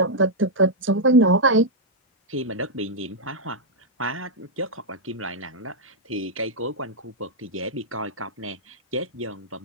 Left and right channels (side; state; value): both; normal; correlation -0.05